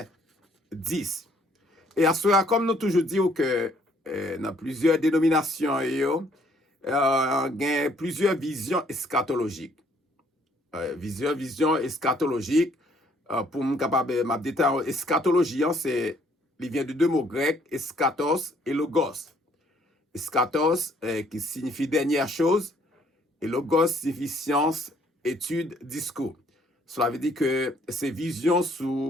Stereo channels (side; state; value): both; normal; correlation 0.64